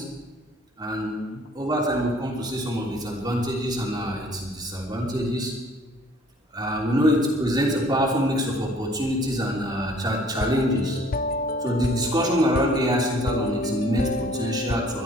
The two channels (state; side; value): normal; both; correlation 0.56